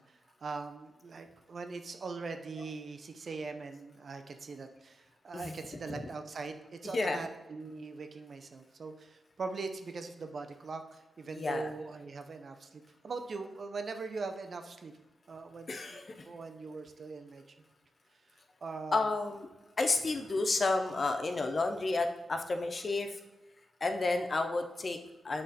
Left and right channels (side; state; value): both; normal; correlation 0.90